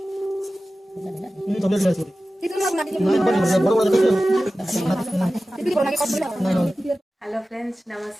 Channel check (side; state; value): both; normal; correlation 0.95